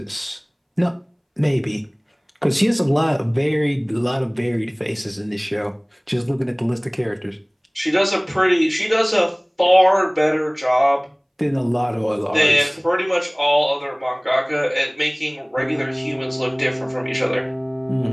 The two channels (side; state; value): both; identical; correlation 1.00